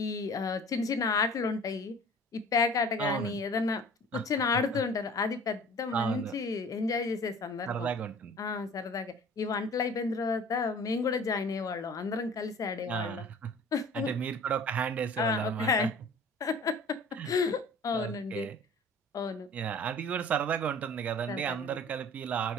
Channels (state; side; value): normal; both; correlation 0.45